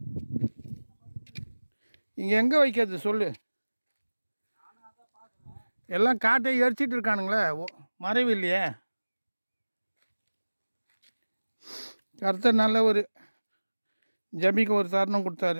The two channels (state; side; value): inverted; both; correlation -1.00